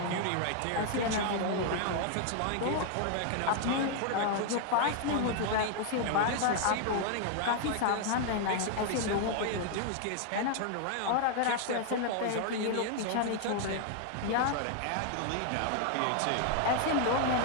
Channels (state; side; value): different; both; correlation 0.00